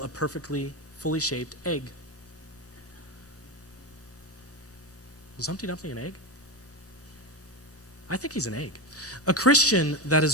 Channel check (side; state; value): both; normal; correlation 0.17